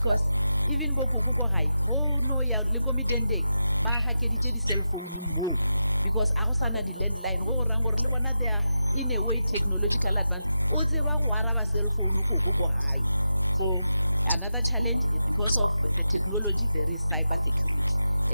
even bokukuko hai ho no ya likomi dende ba hakeditše di-cell phone mo because a go sana di-landline go gorang gore le bona they are in a way technological advance o tseba go araba cell phone koko ko gae. So another challenge is because of the technology there is cyber security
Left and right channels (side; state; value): both; inverted; correlation -0.89